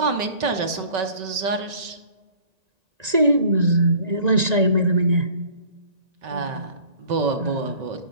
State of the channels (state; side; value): late; left; 1.9 ms